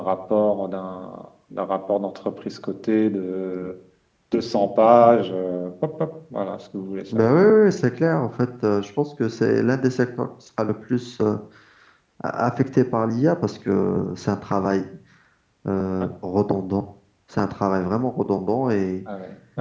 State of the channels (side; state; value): both; identical; correlation 1.00